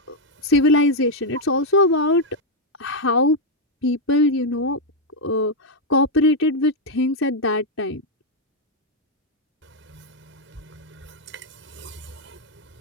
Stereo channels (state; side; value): normal; both; correlation 0.00